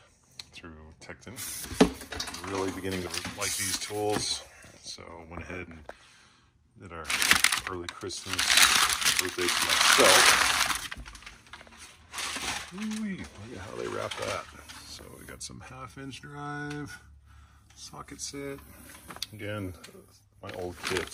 through Tekton. Really beginning to like these tools, so I went ahead and did our early Christmas birthday to myself. Ooh-wee, look at how they wrap that. So we got some 1/2-inch drive, socket set. Again, my old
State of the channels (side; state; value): both; identical; correlation 1.00